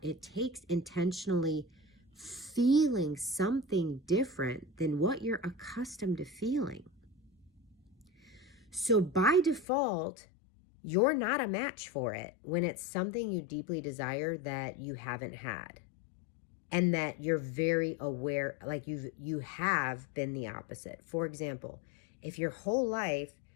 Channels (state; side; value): drops out; right; at 9.7 s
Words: It takes intentionally feeling something different than what you're accustomed to feeling. So by default, you're not a match for it when it's something you deeply desire that you haven't had. And that you're very aware, like you have been the opposite. For example, if your whole life